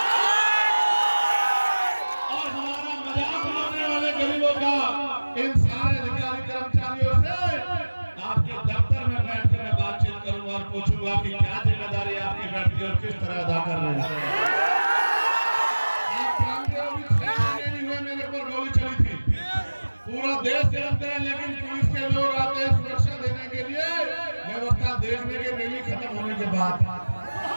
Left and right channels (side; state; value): both; inverted; correlation -1.00